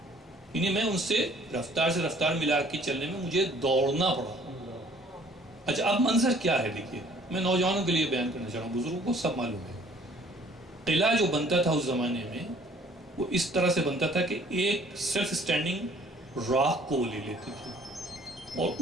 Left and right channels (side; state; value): both; normal; correlation 0.56